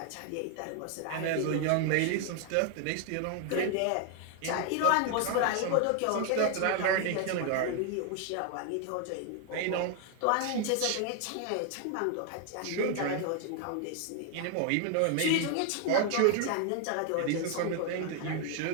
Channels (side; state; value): both; different; correlation 0.00